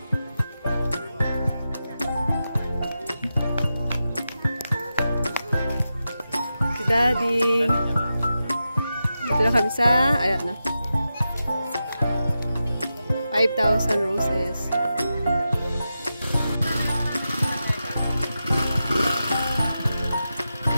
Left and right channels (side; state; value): both; inverted; correlation -0.90